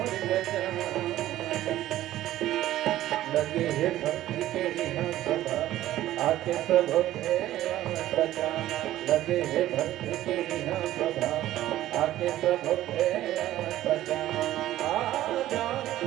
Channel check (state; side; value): quieter; left; 14.0 dB